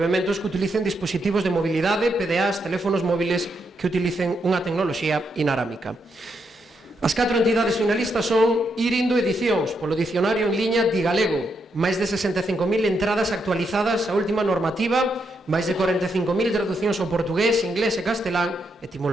que utilicen dispositivos de mobilidade, PDAs, teléfonos móviles que utilicen unha tecnoloxía inarámica. As 4 entidades finalistas son Irindo Edicións, polo dicionario en liña Digalego, máis de 65.000 entradas actualizadas á última normativa, máis de 45.000 traducións ao portugués, inglés e castelán,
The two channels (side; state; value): both; normal; correlation 0.80